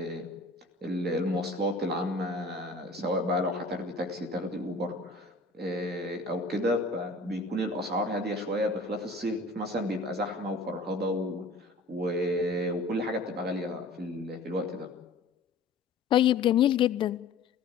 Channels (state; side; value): quieter; right; 3.4 dB